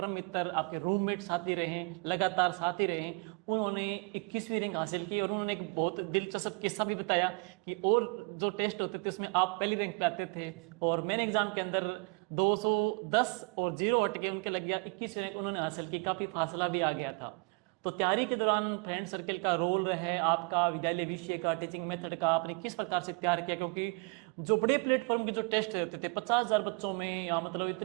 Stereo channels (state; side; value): quieter; left; 32.3 dB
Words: मित्र, आपके रूममेट साथी रहे, लगातार साथी रहे। उन्होंने 21वीं रैंक हासिल की और उन्होंने एक बहुत दिलचस्प किस्सा भी बताया कि और जो टेस्ट होते थे उसमें आप पहली रैंक पे आते थे और मैंने एग्जाम के अंदर 210 और 0 हट के उनके लग गया 21वीं रैंक उन्होंने हासिल की। काफ़ी फासला भी आ गया था। तो तैयारी के दौरान फ्रेंड सर्किल का रोल है, आपका विद्यालय विषय का, टीचिंग मेथड का आपने किस प्रकार से तैयार किया? क्योंकि जो बड़े प्लेटफॉर्म के जो टेस्ट होते थे 50,000 बच्चों में या मतलब